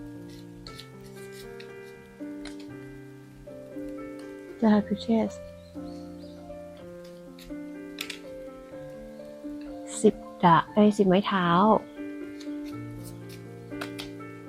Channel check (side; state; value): both; identical; correlation 1.00